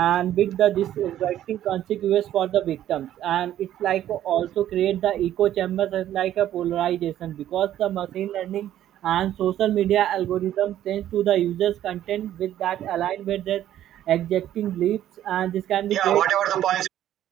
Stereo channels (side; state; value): left; quieter; 12.0 dB